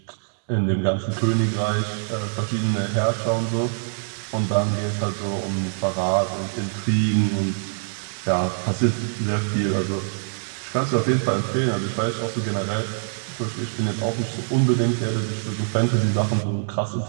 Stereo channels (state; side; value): silent; left; 63 dB below the other